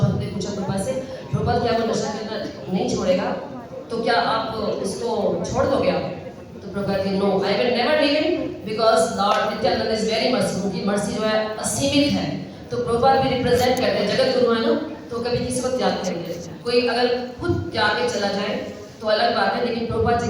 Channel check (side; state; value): both; identical; correlation 1.00